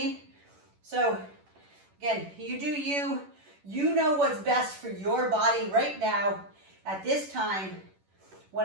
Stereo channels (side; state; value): left; late; 11 ms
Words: So again, you do you. You know what's best for your body right now at this time when